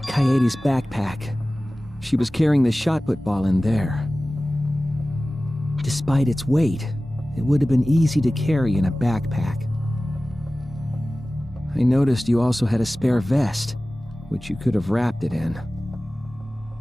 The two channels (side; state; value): both; normal; correlation 0.97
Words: Kaede's backpack. She was carrying the shot put ball in there. Despite its weight, it would have been easy to carry in a backpack. I noticed you also had a spare vest, which you could have wrapped it in.